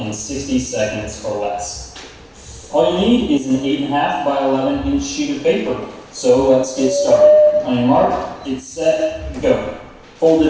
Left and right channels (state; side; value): identical; both; correlation 1.00